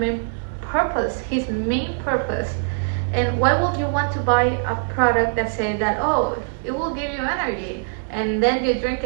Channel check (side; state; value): left; silent; digital silence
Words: purpose, his main purpose. And why would you want to buy a product that says that, oh, it will give you energy, and then you drink